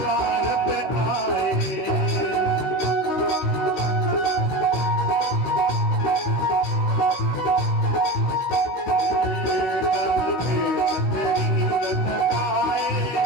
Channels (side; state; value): right; late; 16 ms